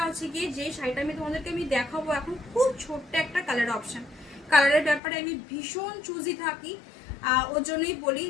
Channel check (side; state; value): right; drops out; at 5.0 s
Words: হচ্ছে কি, যে শাড়িটা আমি তোমাদেরকে দেখাবো এখন খুব ছোট্ট একটা কালার অপশন। কালারের ব্যাপারে আমি ভীষণ চুজি থাকি, ওর জন্যই বলি